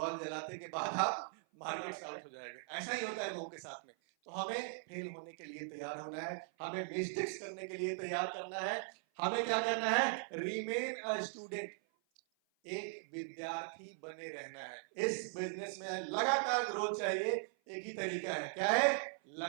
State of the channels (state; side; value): silent; left; 51 dB below the other